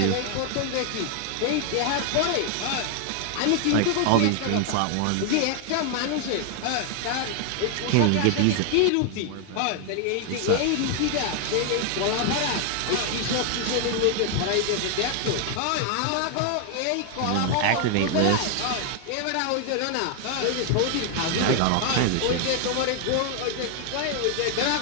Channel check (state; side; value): different; both; correlation 0.00